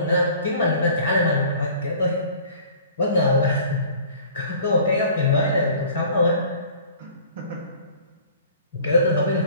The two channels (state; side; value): inverted; both; correlation -0.49